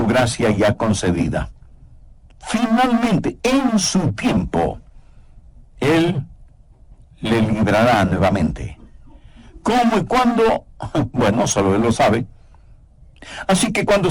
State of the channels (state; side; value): identical; both; correlation 1.00